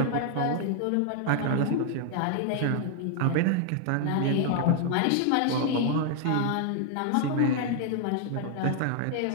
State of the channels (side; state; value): both; different; correlation 0.00